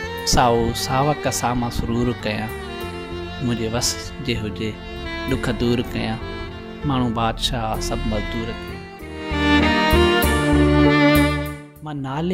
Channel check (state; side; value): identical; both; correlation 1.00